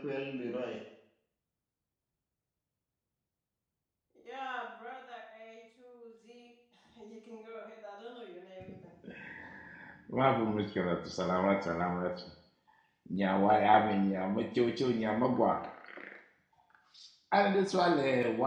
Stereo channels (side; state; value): both; identical; correlation 1.00